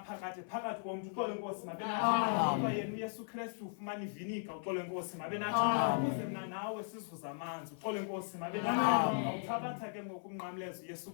phakathi komntu. Uxolo lwenkosi malube nathi. Kodwa yena uYesu Kristu ufumana ivinika. Uxolo lwenkosi malube nathi. Ukuze mna nawe sizuze amanzi. Uxolo lwenkosi malube nathi. Uthabatha ke ngoku umnqamlezo Yesu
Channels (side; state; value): right; silent; 53 dB below the other